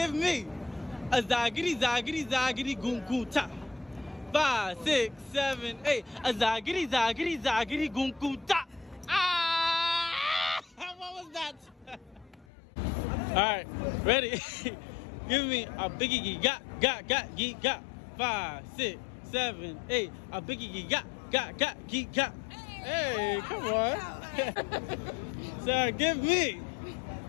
me a zagiri, goom, goom, ta. 5, 6, 7, 8. A zagiri, goom, goom, ta. Ah! What was that? All right, ready? Give me a biggie got, 5, 6, 7, 8. A biggie got, got. Hey, come on. So give me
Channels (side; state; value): right; drops out; at 12.5 s